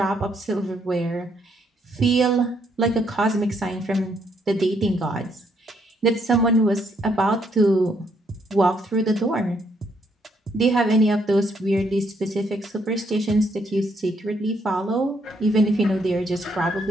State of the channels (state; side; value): normal; both; correlation 0.72